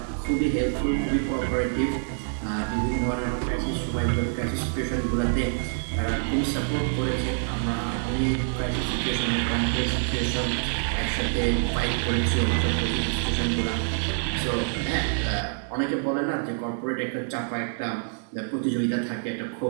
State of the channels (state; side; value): silent; left; digital silence